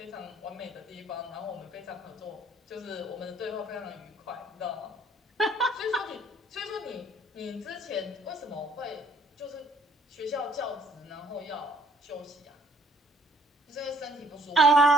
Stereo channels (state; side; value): normal; both; correlation 0.60